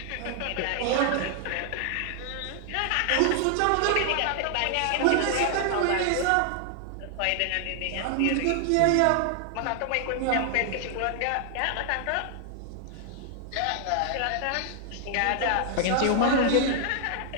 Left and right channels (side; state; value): both; different; correlation 0.00